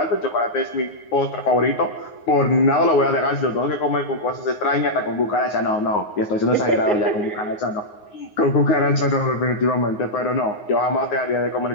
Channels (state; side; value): late; right; 9.6 ms